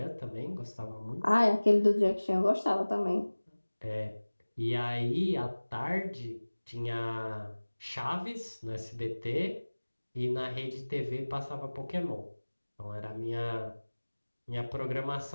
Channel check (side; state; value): both; inverted; correlation -1.00